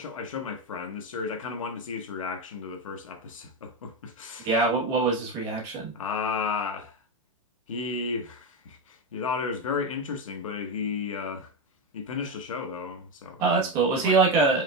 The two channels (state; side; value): normal; both; correlation 0.12